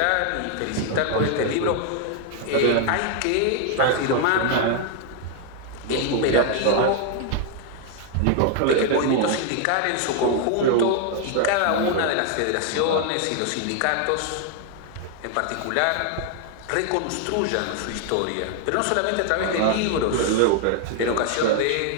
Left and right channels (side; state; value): both; different; correlation 0.00